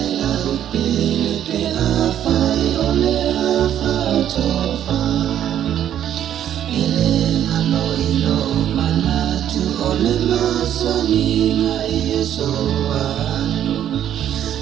la upele pe a fai ole a whaatofa ele ngano ilo manatu ole masaninga i e soanu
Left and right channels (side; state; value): left; quieter; 10.5 dB